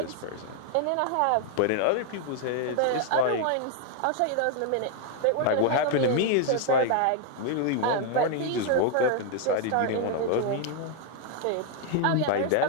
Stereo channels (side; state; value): both; different; correlation 0.00